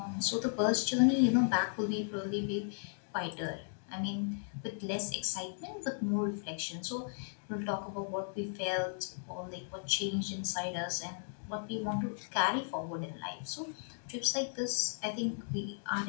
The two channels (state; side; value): silent; right; digital silence